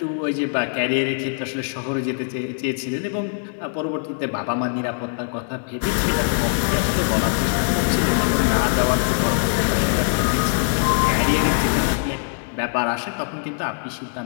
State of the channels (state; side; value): silent; right; digital silence